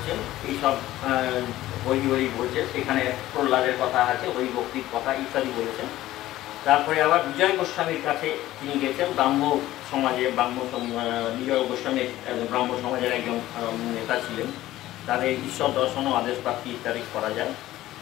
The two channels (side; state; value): right; quieter; 15.2 dB